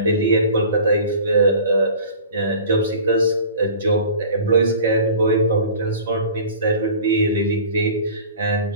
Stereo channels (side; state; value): both; inverted; correlation -0.42